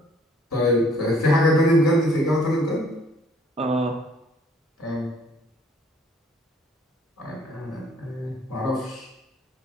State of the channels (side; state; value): both; normal; correlation 0.60